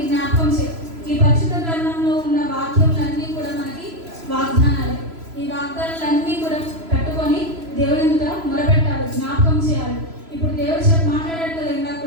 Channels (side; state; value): left; late; 3.0 ms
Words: జ్ఞాపకం చేయాలి. ఈ పరిశుద్ధ గ్రంథంలో ఉన్న వాక్యములన్నీ కూడా మనకి వాగ్దానాలు. ఈ వాగ్దానాలన్నీ కూడా పెట్టుకొని దేవుని ఎదుట మొరపెట్టాలి, జ్ఞాపకం చేయాలి. ఇప్పుడు దేవుడు మాట్లాడాడు కదా ఇందాక